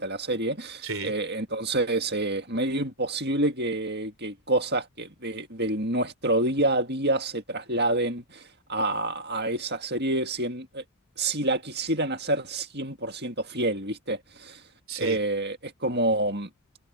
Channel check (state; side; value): normal; both; correlation -0.13